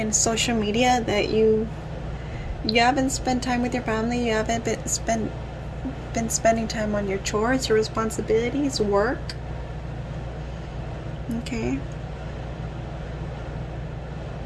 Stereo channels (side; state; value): both; identical; correlation 1.00